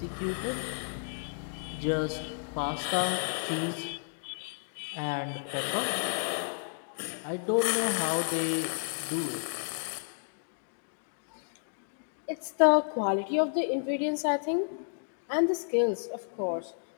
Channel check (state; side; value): silent; right; digital silence